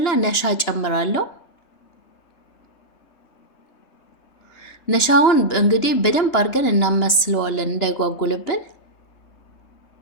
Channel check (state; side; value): late; right; 2.9 ms